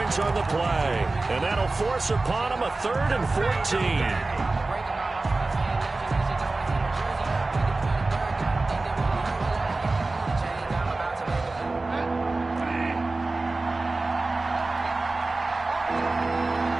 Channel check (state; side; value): quieter; left; 3.3 dB